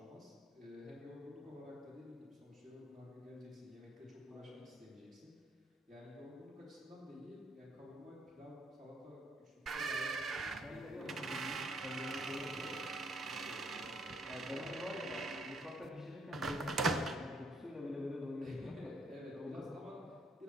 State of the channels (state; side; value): normal; both; correlation 0.69